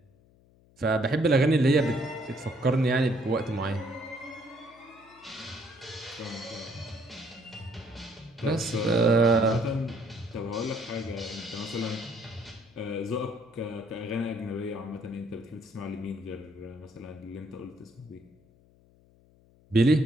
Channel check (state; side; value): noise; left; hum, 29 dB below the sound